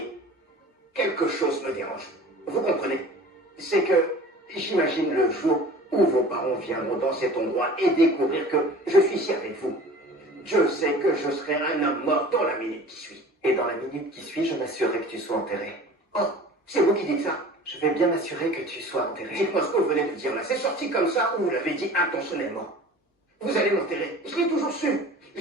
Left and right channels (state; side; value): normal; both; correlation 0.43